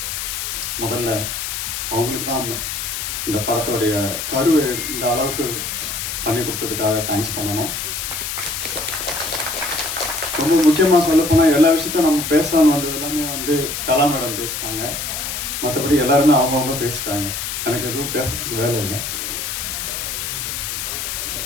முதல்ல அவங்களுக்கு தான் இந்த படத்தோடைய கருவை இந்த அளவுக்கு பண்ணி கொடுத்ததுக்காக தேங்க்ஸ் பண்ணணும். ரொம்ப முக்கியமாக சொல்ல போனால் எல்லா விஷயத்தையும் நம்ம பேசலான்னு வந்தது எல்லாமே கலா மேடம் பேசிட்டாங்க. மற்றபடி எல்லாருமே அவங்கவுங்க பேசிட்டாங்க. எனக்கு எதுவும் பேசுறதுக்கு வேலை இல்லை.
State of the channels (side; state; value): left; noise; hiss, 4 dB below the sound